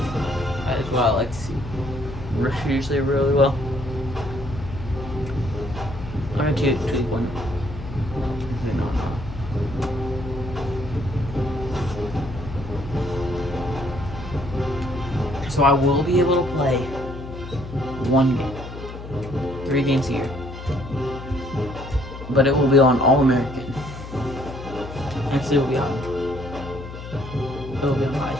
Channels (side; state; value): left; noise; hum, 11 dB below the sound